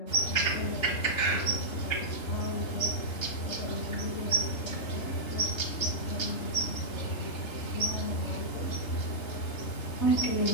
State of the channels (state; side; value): late; right; 2.8 ms